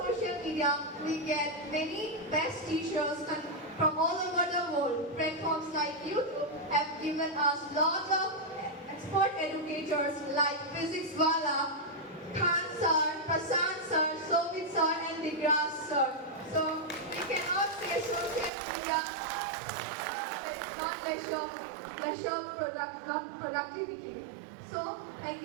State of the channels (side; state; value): left; drops out; at 18.5 s